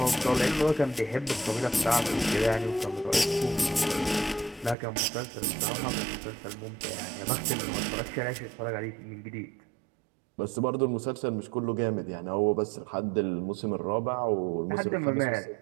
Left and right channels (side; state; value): left; drops out; at 4.8 s